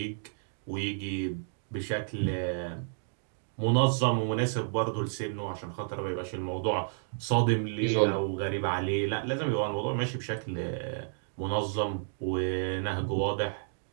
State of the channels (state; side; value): silent; left; digital silence